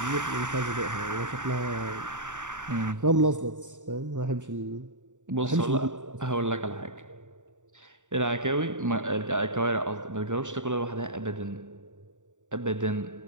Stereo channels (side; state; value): left; late; 0.86 ms